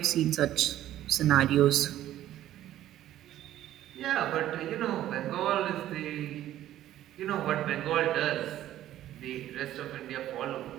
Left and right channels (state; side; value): quieter; left; 12.9 dB